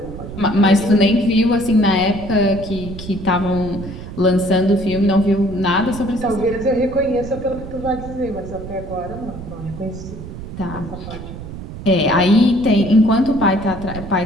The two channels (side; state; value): right; noise; rumble, 11 dB below the sound